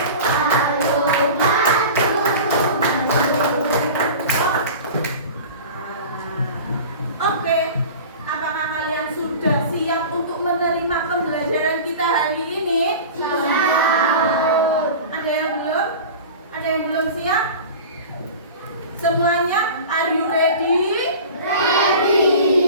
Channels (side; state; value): both; inverted; correlation -0.36